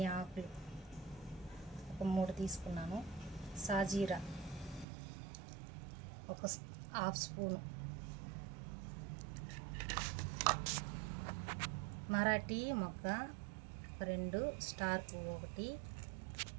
ఆకులు ఒక 3 తీసుకున్నాను. సాజీరా ఒక హాఫ్ స్పూను, మరాఠీ మొగ్గ 2, స్టార్ పువ్వు 1,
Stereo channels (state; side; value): drops out; left; at 4.9 s